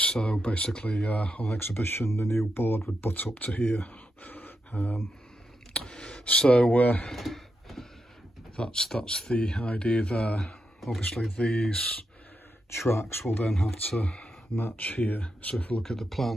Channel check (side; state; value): both; normal; correlation 0.85